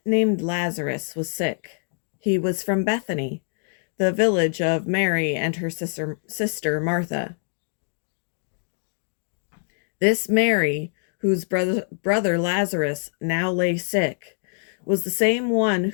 named Lazarus was sick. He was from Bethany, the village of Mary and her sister Martha. This Mary, whose brother Lazarus now lay sick, was the same one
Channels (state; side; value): silent; right; 56 dB below the other